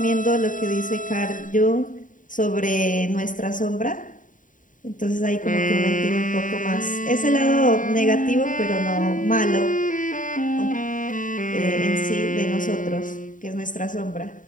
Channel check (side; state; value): right; late; 0.38 ms